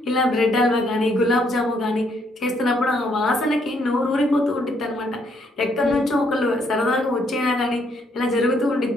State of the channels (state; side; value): normal; both; correlation 0.71